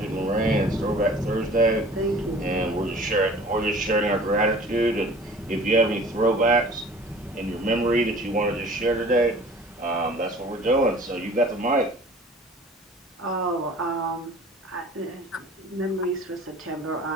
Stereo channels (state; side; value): normal; both; correlation 0.46